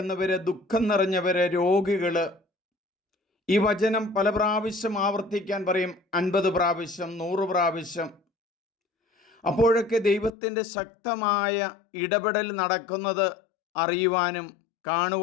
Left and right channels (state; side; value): drops out; right; at 10.3 s